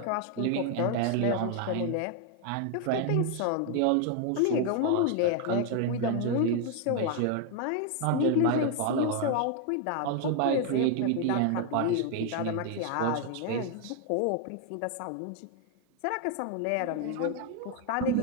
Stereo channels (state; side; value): different; both; correlation 0.01